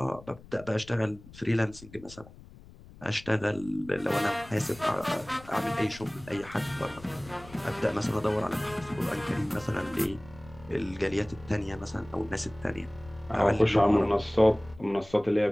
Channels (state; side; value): noise; left; rumble, 20 dB below the sound